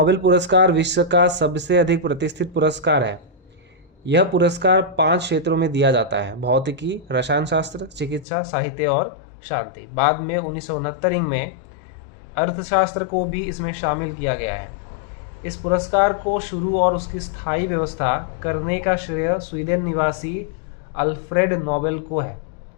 पुरस्कार विश्व का सबसे अधिक प्रतिष्ठित पुरस्कार है। यह पुरस्कार 5 क्षेत्रों में दिया जाता है: भौतिकी, रसायन शास्त्र, चिकित्सा, साहित्य और शांति। बाद में 1969 में अर्थशास्त्र को भी इसमें शामिल किया गया है। इस पुरस्कार को शुरू और उसकी स्थायी व्यवस्था करने का श्रेय स्वीडन निवासी अल्फ्रेड नोबेल को है।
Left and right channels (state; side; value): drops out; right; at 8.2 s